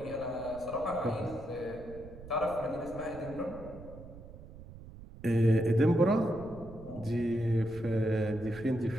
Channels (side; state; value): right; noise; rumble, 16 dB below the sound